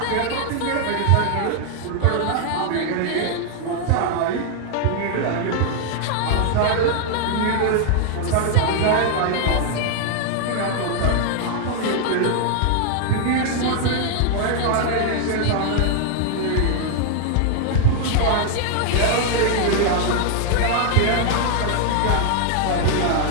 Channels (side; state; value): both; different; correlation 0.00